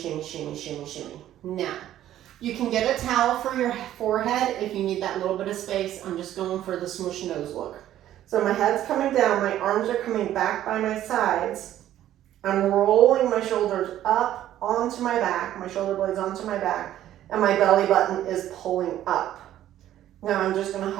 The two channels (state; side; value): quieter; left; 12.4 dB